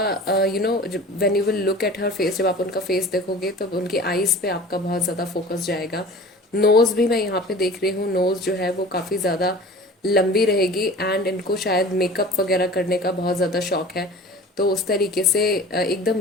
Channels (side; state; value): both; normal; correlation 0.41